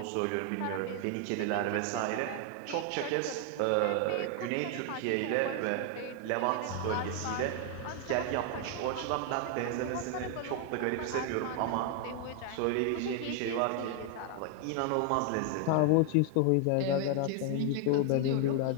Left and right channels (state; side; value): different; both; correlation 0.00